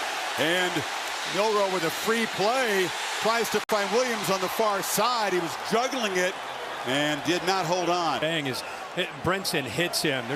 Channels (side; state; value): both; identical; correlation 1.00